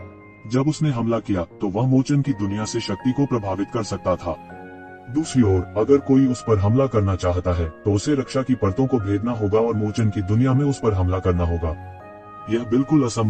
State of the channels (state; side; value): identical; both; correlation 1.00